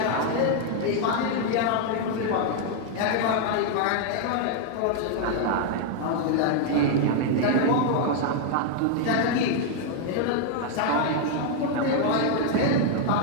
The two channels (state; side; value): different; both; correlation 0.00